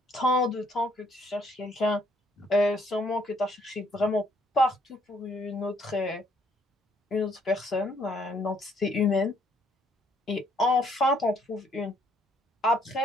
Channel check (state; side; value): normal; both; correlation 0.67